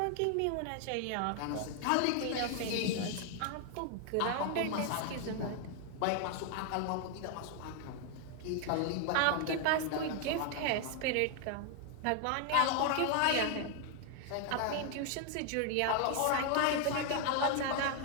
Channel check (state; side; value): different; both; correlation 0.00